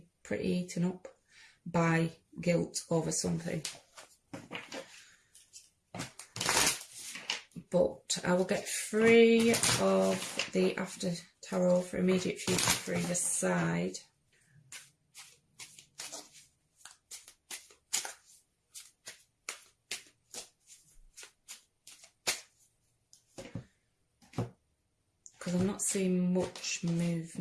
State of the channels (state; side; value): identical; both; correlation 1.00